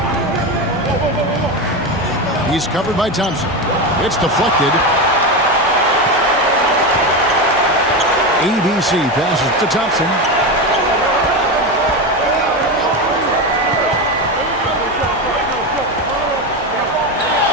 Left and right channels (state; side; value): normal; both; correlation 0.17